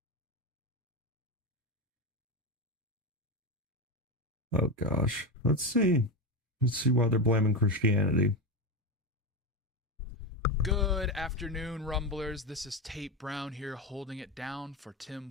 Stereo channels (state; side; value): normal; both; correlation 0.16